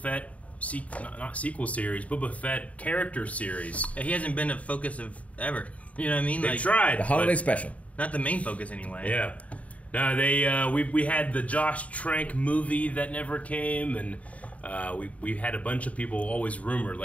not sequel series, Boba Fett character series. He hasn't been a focus of ever. You know what I mean? They tried. The holiday special. Not the main focus anyway. Yeah. No, they we had the Josh Trank movie that never came, and we had a bunch of people always rumored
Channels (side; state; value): right; late; 0.068 ms